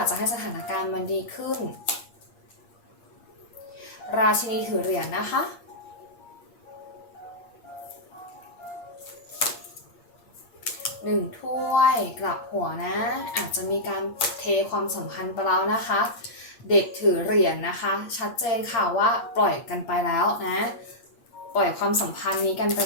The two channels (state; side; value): late; right; 8.5 ms